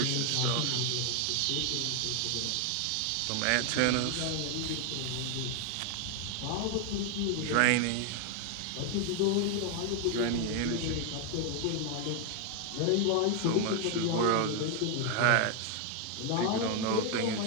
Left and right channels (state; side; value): different; both; correlation 0.00